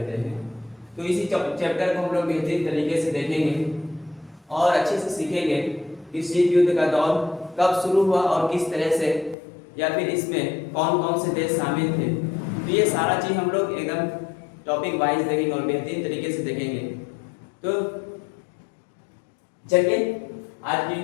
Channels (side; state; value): right; drops out; at 9.3 s